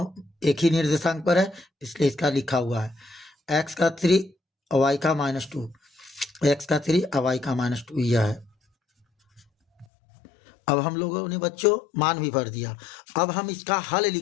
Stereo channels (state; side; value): drops out; right; at 9.9 s